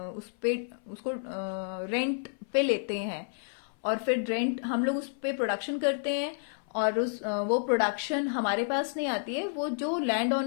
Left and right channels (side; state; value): right; silent; 58 dB below the other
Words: उसको रेंट पे लेते हैं और फिर रेंट हम लोग उस पे प्रोडक्शन करते हैं और वो प्रोडक्शन हमारे पास नहीं आती है, वो जो लैंड